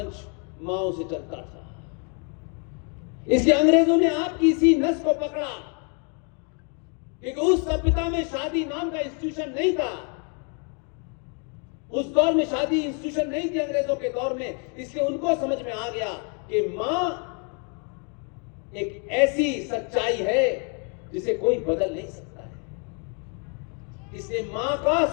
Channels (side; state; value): right; quieter; 38.4 dB